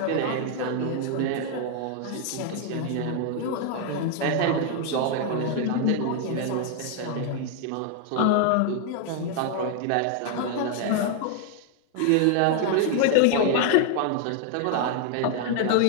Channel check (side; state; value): both; different; correlation 0.00